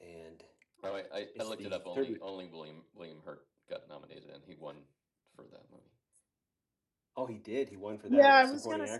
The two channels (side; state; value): both; identical; correlation 1.00